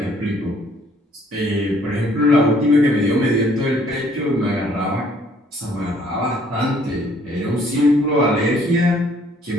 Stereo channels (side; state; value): both; normal; correlation 0.62